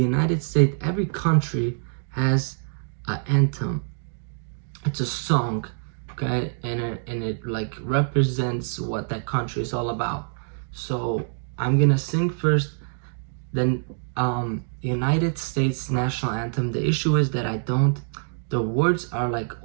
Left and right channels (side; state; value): left; silent; digital silence